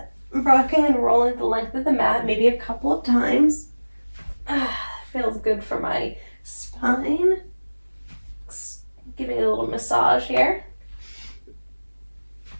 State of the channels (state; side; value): inverted; both; correlation -1.00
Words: Rocking and rolling the length of the mat maybe a couple of times. Feels good for my spine. Giving it a little massage here.